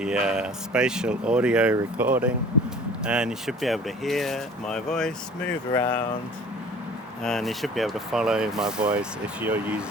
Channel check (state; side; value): normal; both; correlation 0.47